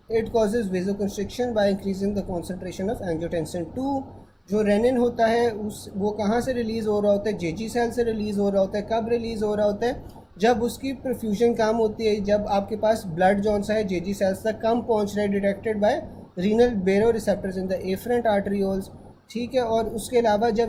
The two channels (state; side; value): identical; both; correlation 1.00